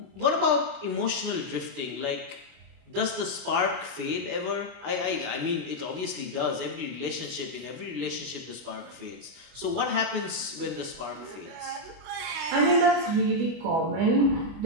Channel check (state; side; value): late; left; 24 ms